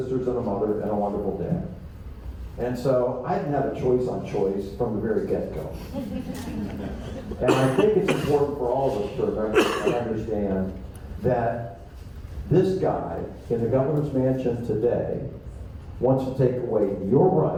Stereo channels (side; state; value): both; identical; correlation 1.00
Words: and a mother and a wonderful dad. And so I didn't have a choice on choice from the very get-go. And I think it's important for all of us to remember and understand that this guy in the governor's mansion today wants to take away your